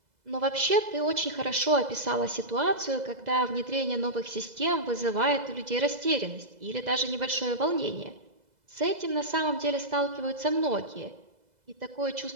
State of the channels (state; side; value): late; left; 2.0 ms